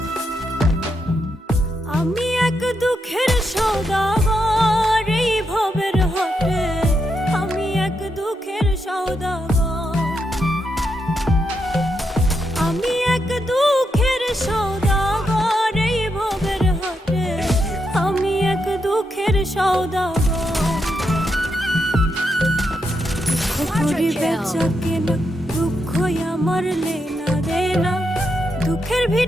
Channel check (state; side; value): normal; both; correlation 0.82